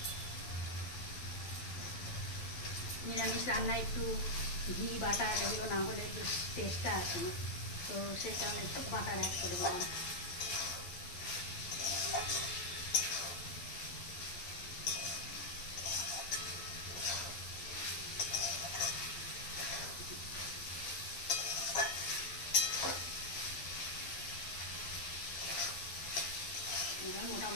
নিরামিষ রান্নায় একটু ঘি বাটার এগুলো না হলে বেশ টেস্টটা আসে না, তো সেই কারণে একটু বাটার অ্যাড করে দিলাম। এবার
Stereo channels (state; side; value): late; right; 12 ms